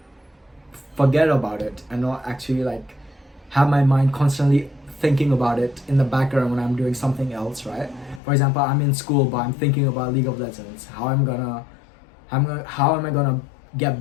forget about it and not actually like have my mind constantly thinking about it in the background when I'm doing something else, right? For example, I'm in school but I'm thinking about League of Legends, how am I gonna get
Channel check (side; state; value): right; drops out; at 8.2 s